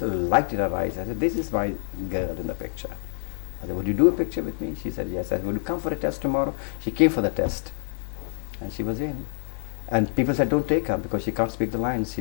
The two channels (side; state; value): right; silent; 61 dB below the other